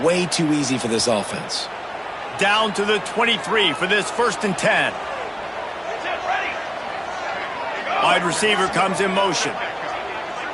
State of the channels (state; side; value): identical; both; correlation 1.00